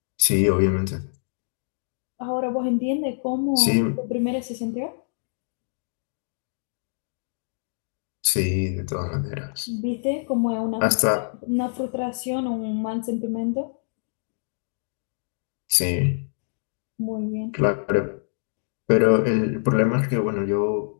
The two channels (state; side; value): silent; right; digital silence